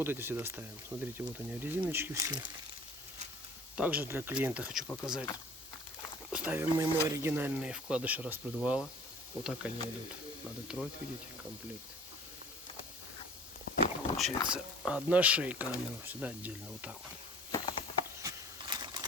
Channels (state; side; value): normal; both; correlation 0.47